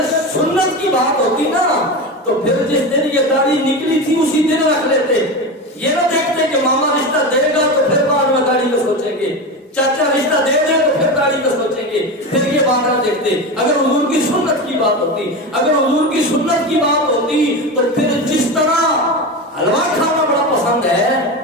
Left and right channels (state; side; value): normal; both; correlation 0.22